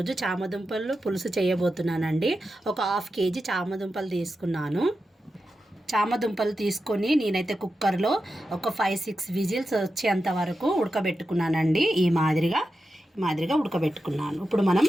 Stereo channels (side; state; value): both; normal; correlation 0.90